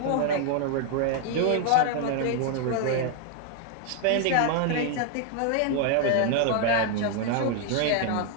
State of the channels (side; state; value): both; different; correlation 0.00